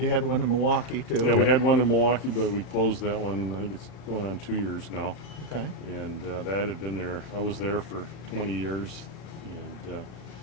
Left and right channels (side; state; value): right; late; 34 ms